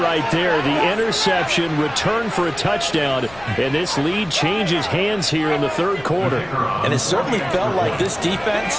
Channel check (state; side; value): noise; left; rumble, 21 dB below the sound